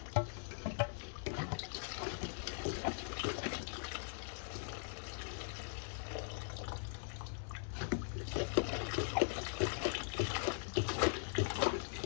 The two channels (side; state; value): right; silent; 50 dB below the other